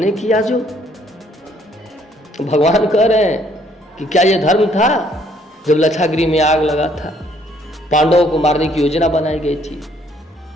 किया जो। भगवान कह रहे हैं कि क्या यह धर्म था जब लच्छागृह में आग लगा था, पांडवों को मारने की योजना बनाई गई थी,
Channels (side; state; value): both; normal; correlation 0.65